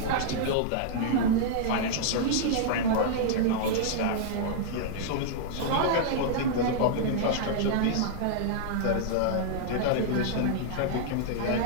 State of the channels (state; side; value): different; both; correlation -0.01